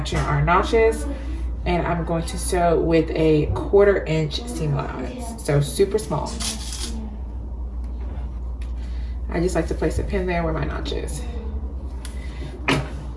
our notches, and I'm going to sew with a 1/4 inch seam allowance, so super small. I just like to place a pin there where my notch is. And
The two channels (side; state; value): both; identical; correlation 1.00